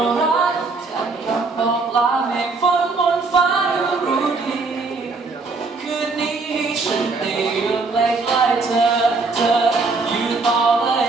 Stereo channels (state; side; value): quieter; left; 4.0 dB